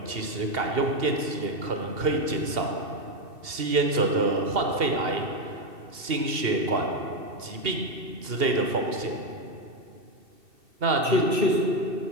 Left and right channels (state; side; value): late; left; 2.7 ms